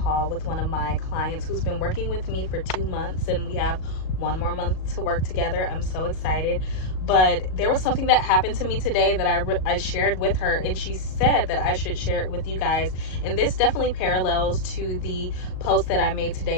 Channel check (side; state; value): right; late; 38 ms